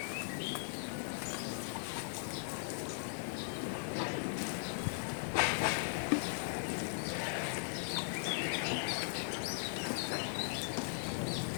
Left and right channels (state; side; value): silent; right; digital silence